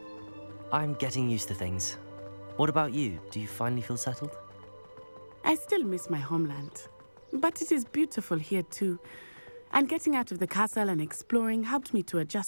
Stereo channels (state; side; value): inverted; both; correlation -1.00